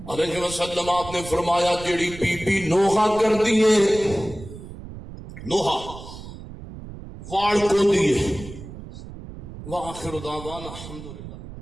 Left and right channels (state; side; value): noise; right; rumble, 13 dB below the sound